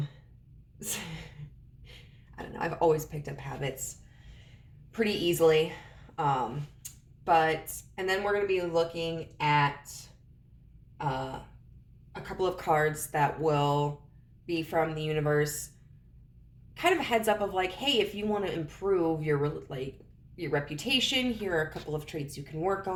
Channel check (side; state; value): both; identical; correlation 1.00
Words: don't know, I've always picked up habits pretty easily. And then we're going to be looking at a couple of cards that will be from the universe, kind of a heads up of like, hey, if you want to improve your reputation, here are a couple of traits you can work